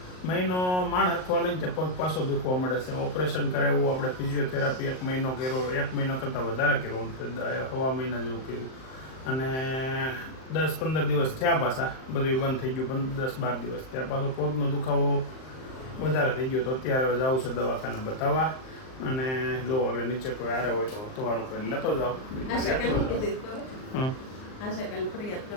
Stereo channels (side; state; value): right; late; 38 ms